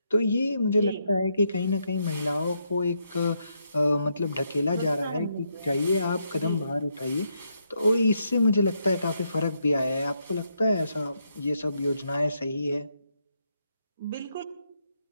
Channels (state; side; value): inverted; both; correlation -0.79